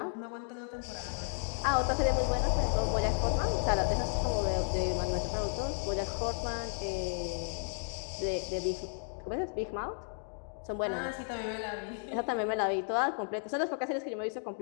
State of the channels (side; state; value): right; silent; digital silence